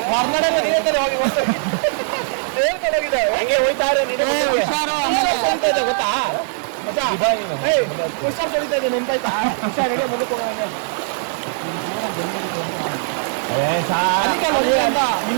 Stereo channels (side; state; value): left; silent; digital silence